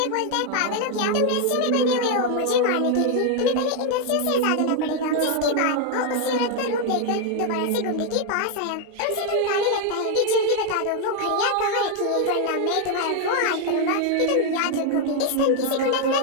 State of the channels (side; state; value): both; different; correlation 0.01